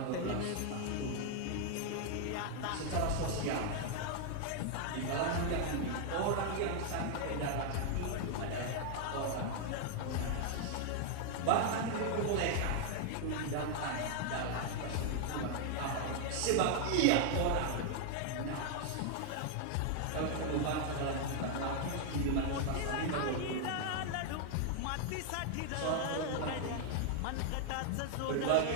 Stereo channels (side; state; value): both; different; correlation 0.00